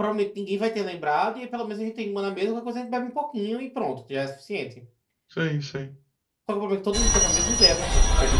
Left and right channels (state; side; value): identical; both; correlation 1.00